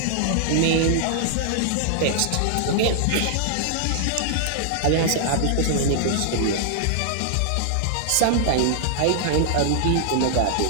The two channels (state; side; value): different; both; correlation -0.01